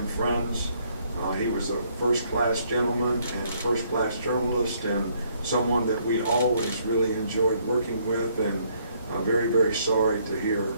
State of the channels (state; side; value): inverted; both; correlation -0.68